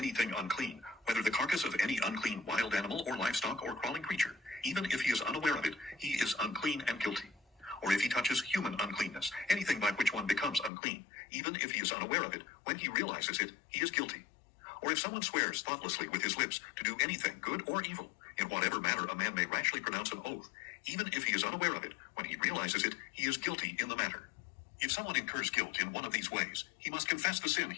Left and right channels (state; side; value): drops out; right; at 10.7 s